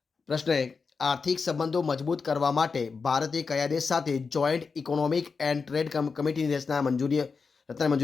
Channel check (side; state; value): right; quieter; 5.0 dB